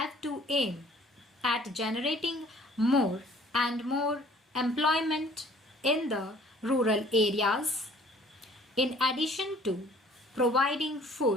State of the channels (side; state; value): both; normal; correlation 0.55